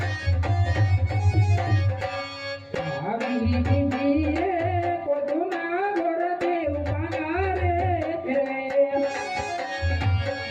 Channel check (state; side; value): identical; both; correlation 1.00